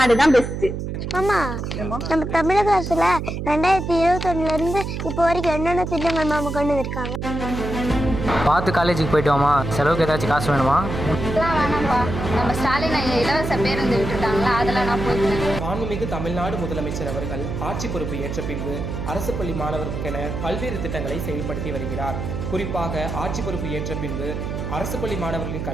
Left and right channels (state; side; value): noise; right; hum, 4 dB below the sound